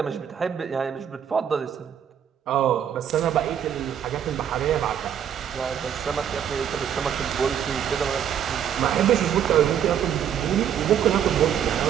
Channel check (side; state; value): left; quieter; 9.1 dB